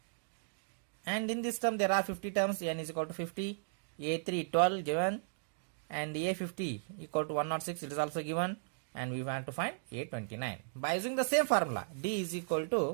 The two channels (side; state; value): left; silent; digital silence